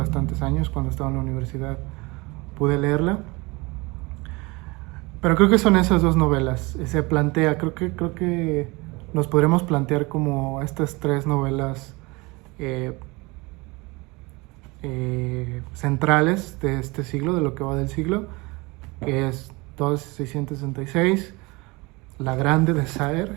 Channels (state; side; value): quieter; left; 24.9 dB